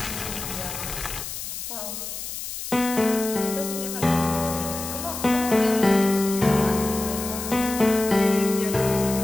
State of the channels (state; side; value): noise; left; hiss, 7 dB below the sound